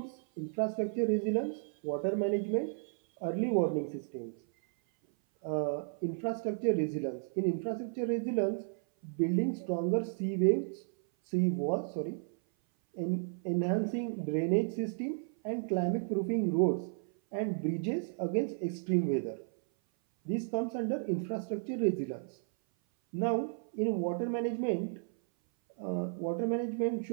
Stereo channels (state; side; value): silent; left; 56 dB below the other